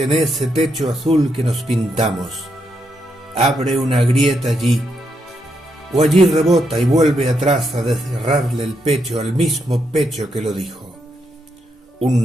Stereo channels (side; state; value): both; normal; correlation 0.80